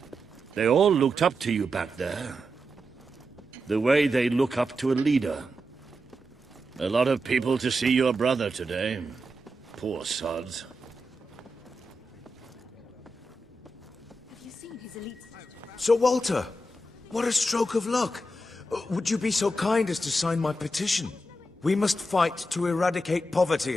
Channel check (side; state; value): both; normal; correlation 0.87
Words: They all looked up to you back there. The way they look up to a leader. A lot of people to see your brother today. Poor sods. Sir Walter, what a stroke of luck. Would you be so kind as to sign my petition? We must fight to eradicate